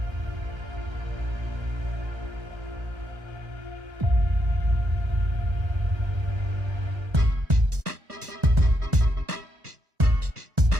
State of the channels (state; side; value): late; left; 1.3 ms